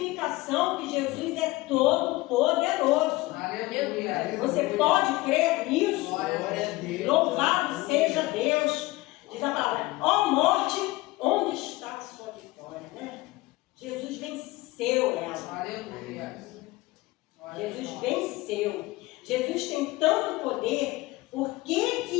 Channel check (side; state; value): right; quieter; 20.2 dB